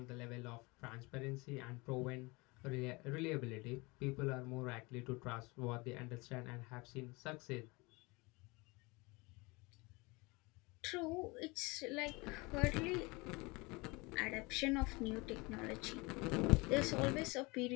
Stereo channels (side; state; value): right; quieter; 25.6 dB